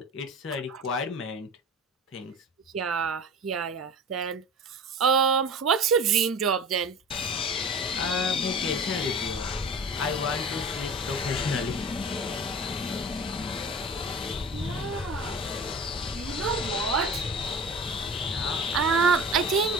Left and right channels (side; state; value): both; normal; correlation 0.37